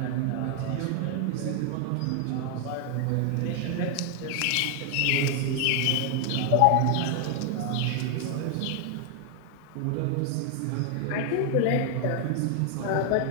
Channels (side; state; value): both; different; correlation 0.00